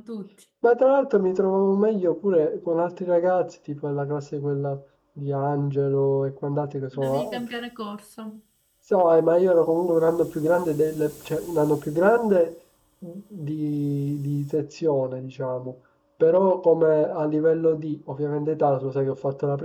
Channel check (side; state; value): both; identical; correlation 1.00